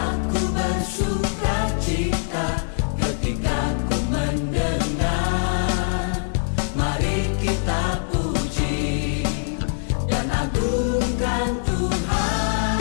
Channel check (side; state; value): right; silent; digital silence